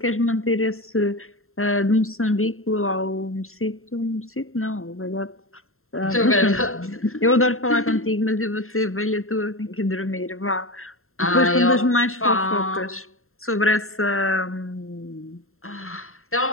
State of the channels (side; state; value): right; late; 0.61 ms